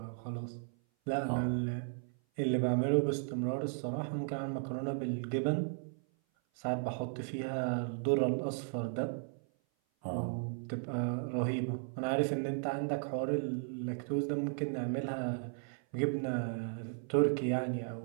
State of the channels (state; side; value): silent; left; 54 dB below the other